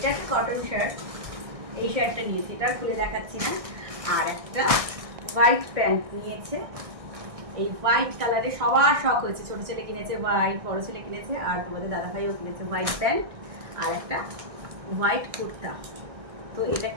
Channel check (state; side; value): late; left; 1.6 ms